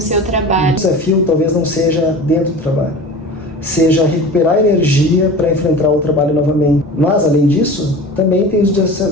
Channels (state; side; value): normal; both; correlation 0.36